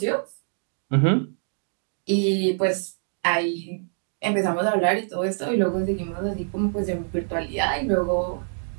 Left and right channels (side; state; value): left; silent; digital silence